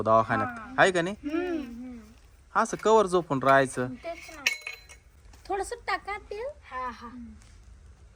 दवाखान्यात, आहे का नाही? असं कवर झोपून राहायचं. तेच ना. थोडस टाका तेल. हा हा.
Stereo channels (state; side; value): identical; both; correlation 1.00